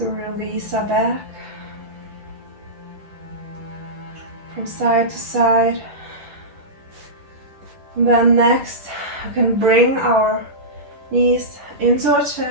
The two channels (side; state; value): left; late; 10 ms